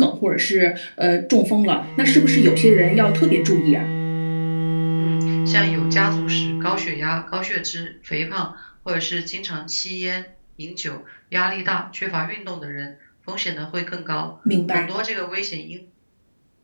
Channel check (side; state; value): both; inverted; correlation -1.00